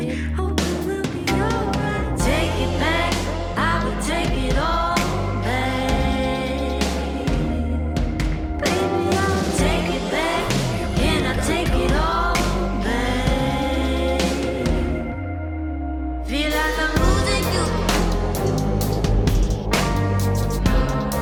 Hope it will be alright. Take it back, I would take it all back. Baby, I'll take it back, and I take it all back. Feel like I'm losing you.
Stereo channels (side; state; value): both; identical; correlation 1.00